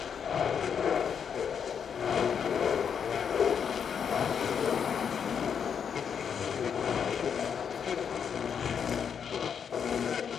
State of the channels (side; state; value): right; quieter; 7.3 dB